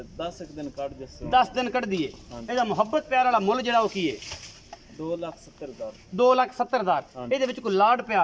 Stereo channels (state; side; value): identical; both; correlation 1.00